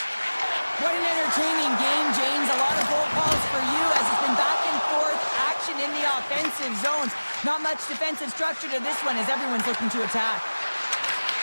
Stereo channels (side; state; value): both; inverted; correlation -1.00